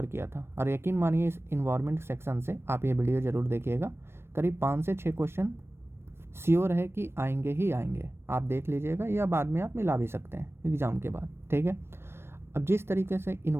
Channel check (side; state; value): left; late; 0.12 ms